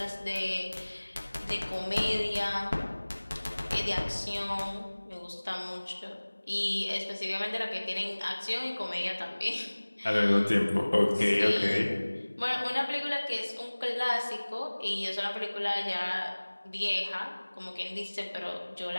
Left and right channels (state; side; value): inverted; both; correlation -1.00